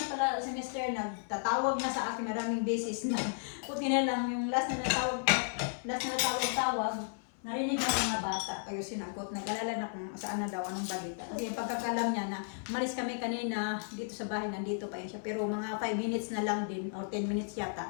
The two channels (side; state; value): right; silent; 55 dB below the other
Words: pala semester, nagtatawag na sa akin, maraming beses na. Puti na lang yung last na tawag, narinig na mga bata, kayo sinagot, nag-alala na kung saan na daw, anong balita. Kasi yung pagkakalam niya na, malis kami kanina dito sa bahay, nandito pa yun siya. Pero mga 5 minutes na lang din, or 10 minutes